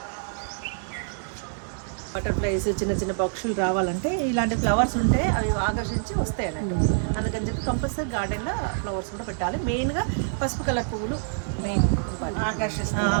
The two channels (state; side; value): silent; left; digital silence